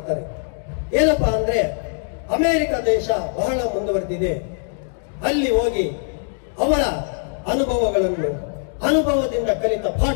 ಏನಪ್ಪಾ ಅಂದ್ರೆ, ಅಮೆರಿಕ ದೇಶ ಬಹಳ ಮುಂದುವರೆದಿದೆ, ಅಲ್ಲಿ ಹೋಗಿ ಅವರ ಅನುಭವದಿಂದ ಕಲಿತ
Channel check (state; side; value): silent; right; digital silence